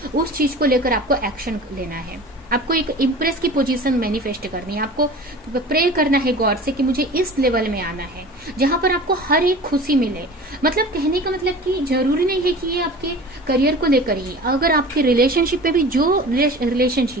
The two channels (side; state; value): both; normal; correlation 0.39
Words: उस चीज को लेकर आपको एक्शन लेना है। आपको एक इम्प्रेस की पोजीशन मैनिफेस्ट करनी है, आपको प्रे करना है गॉड से कि मुझे इस लेवल में आना है जहां पर आपको हर एक खुशी मिले। मतलब कहने का मतलब कि जरूरी नहीं है कि ये आपके करियर को लेकर ही, अगर आपके रिलेशनशिप में भी जो